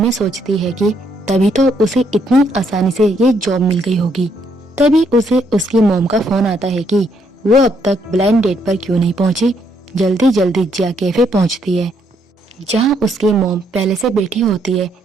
सोचती है कि तभी तो उसे इतनी आसानी से ये जॉब मिल गई होगी। तभी उसे उसकी मॉम का फोन आता है कि वो अब तक ब्लाइंड डेट पर क्यों नहीं पहुंची। जल्दी जल्दी जिया कैफे पहुंचती है, जहां उसकी मॉम पहले से बैठी होती है।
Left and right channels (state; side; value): normal; both; correlation 0.72